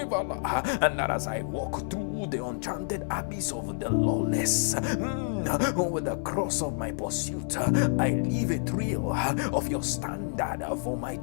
And that as I walk through the enchanted abyss of the lawless, with the cross of my pursuit, I leave a trail of your standard for my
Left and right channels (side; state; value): right; silent; 59 dB below the other